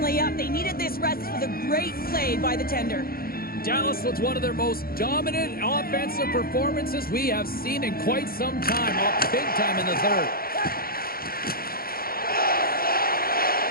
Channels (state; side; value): late; right; 0.43 ms